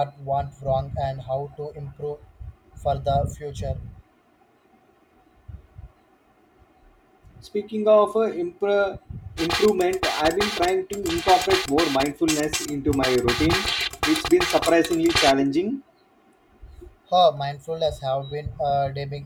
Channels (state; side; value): identical; both; correlation 1.00